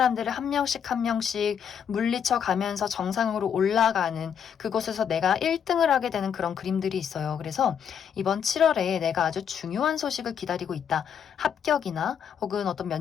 한 명씩 한 명씩 물리쳐 가면서 정상으로 올라가는 그곳에서 내가 1등을 하게 되는 그런 그림들이 있어요. 그래서 이번 7월에 내가 아주 중요한 소식을 기다리고 있다. 합격이나 혹은 어떤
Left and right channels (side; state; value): right; quieter; 8.0 dB